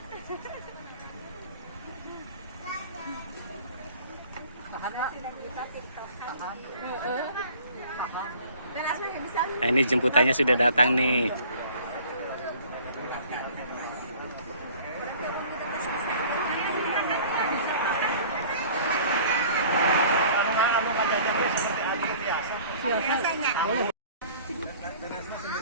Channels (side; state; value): both; inverted; correlation -0.49